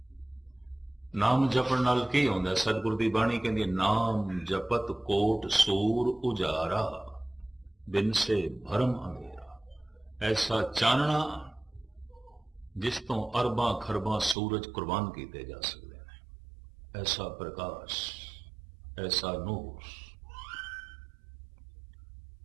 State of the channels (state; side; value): drops out; left; at 14.4 s